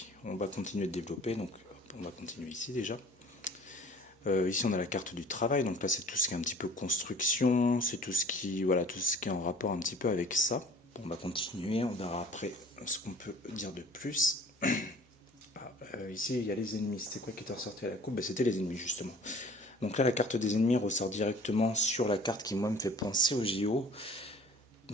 On va continuer de développer, donc on va continuer ici déjà. Ici on a la carte du travail, donc là c'est tout ce qui est un petit peu construction, c'est tout ce qui, voilà, tout ce qui est en rapport un petit peu avec ça. Bon, on va continuer, on verra après ce qu'on peut dire de plus. Ici il y a les ennemis, c'était quoi qui était ressorti à la coupe? C'était les ennemis justement. Donc là la carte des ennemis ressort directement sur la carte qui moi me fait penser au JO.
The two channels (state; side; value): normal; both; correlation 0.48